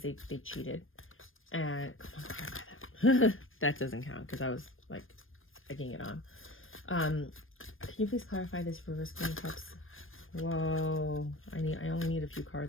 they cheated. And come on, clarify that. That doesn't count because I was egging it on. Can you please clarify this reverse Queen of Cups? Whoa, I only need a few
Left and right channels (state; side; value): late; right; 0.59 ms